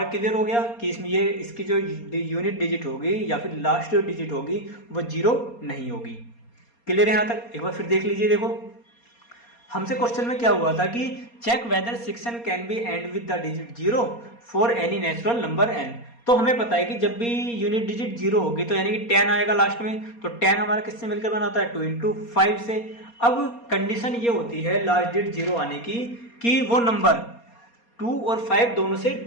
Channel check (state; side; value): late; right; 4.3 ms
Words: क्लियर हो गया कि इसमें ये इसकी जो यूनिट डिजिट होगी या फिर लास्ट जो डिजिट होगी वो 0 नहीं होगी। क्लियर है यहाँ तक। एक बार फिर देख लीजिए। देखो हमसे क्वेश्चन में क्या हुआ था कि check whether 6n can be end with the digit 0 for any natural number n। तो हमें पता है कि जब भी यूनिट डिजिट 0 होगी तो यानी कि 10 आएगा लास्ट में, तो 10 हमारा किससे मिलकर बनाता है, 2 इंटू 5 से। अब कंडीशन ये होती है लास्ट डिजिट 0 आने की कि वो नंबर 2 और 5 दोनों से